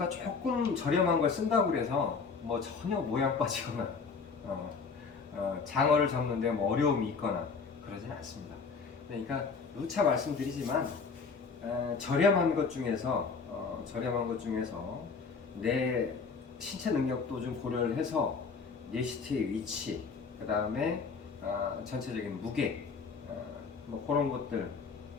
조금 저렴한 걸 쓴다고 그래서 뭐 전혀 모양 빠지거나 장어를 잡는데 뭐 어려움이 있거나 그러진 않습니다. 그러니까 누차 말씀드리지만 저렴한 것 중에서 내 신체 능력도 좀 고려를 해서 리스트의 위치, 그 다음에 전체적인 무게, 뭐 그런 것들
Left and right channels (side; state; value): right; quieter; 5.1 dB